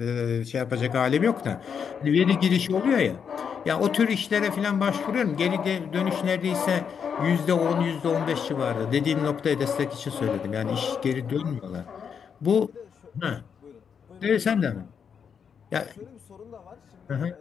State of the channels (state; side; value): quieter; right; 7.0 dB